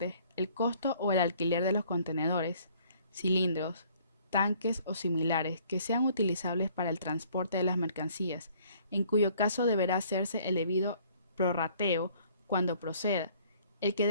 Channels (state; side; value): inverted; both; correlation -0.58